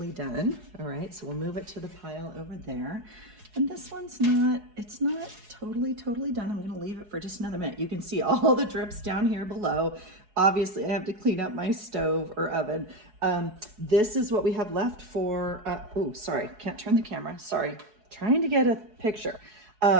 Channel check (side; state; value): left; late; 4.7 ms